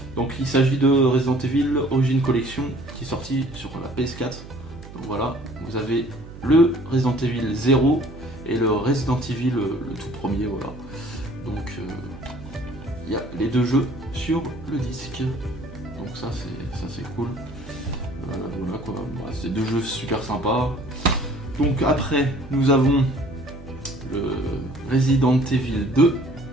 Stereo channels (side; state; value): right; noise; hum, 15 dB below the sound